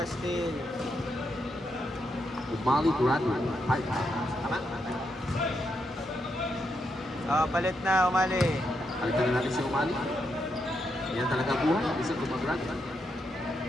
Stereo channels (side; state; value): both; normal; correlation 0.81